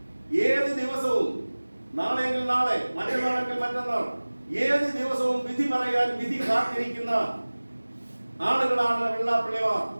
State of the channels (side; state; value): both; inverted; correlation -1.00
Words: ഏത് ദിവസവും, നാളെയെങ്കിൽ നാളെ, മറ്റന്നാളെങ്കിൽ മറ്റന്നാൾ, ഏത് ദിവസവും വിധി പറയാൻ വിധി കാത്തിരിക്കുന്ന ആളുകളാണ് വെള്ളാപ്പള്ളിമാർ.